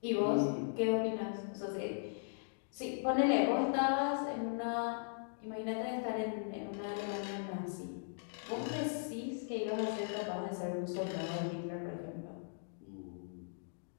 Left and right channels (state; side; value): silent; right; digital silence